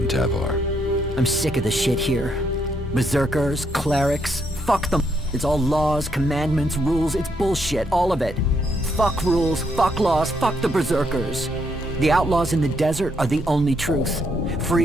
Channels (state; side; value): normal; both; correlation 0.75